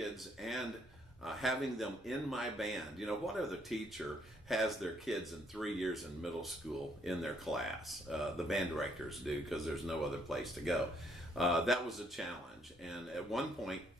and having them in my band, what other teacher has their kids in 3 years in middle school in their class? The band directors do, because there's no other place to go. That was a challenge. And at one point,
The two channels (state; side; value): normal; both; correlation 0.69